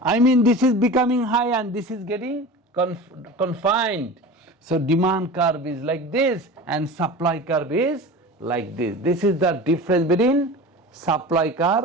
I mean, this is becoming high and this is getting confined. So demand curve is like this and supply curve is like this. This is the difference between supply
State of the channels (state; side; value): normal; both; correlation 0.34